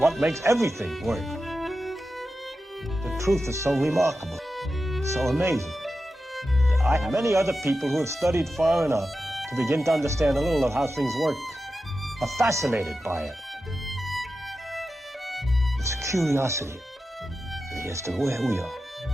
makes everything work. The truth is so remarkable, so amazing. Many other people who have studied far enough to begin to understand a little of how things work are fascinated by it. It's curiosity as to where we are,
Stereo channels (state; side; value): normal; both; correlation 0.91